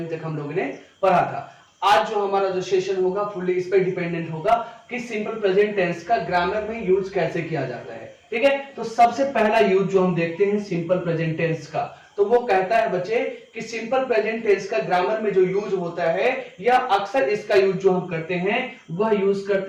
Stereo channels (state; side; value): identical; both; correlation 1.00